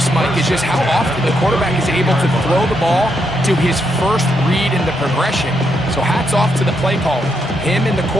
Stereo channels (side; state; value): both; normal; correlation 0.79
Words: Mike, is just how often the quarterback is able to throw the ball to his first read in the progression. So hats off to the play caller. Him and the